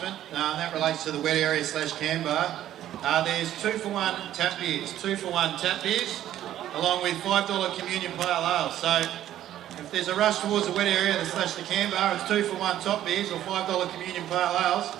That relates to the wet area / can bar. There's 2-for-1 tap beers, 2-for-1 tap beers, along with $5 communion pale ale. So if there's a rush towards the wet area / the can bar, it's 2-for-1 top beers or $5 communion pale ales.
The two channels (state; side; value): quieter; left; 12.3 dB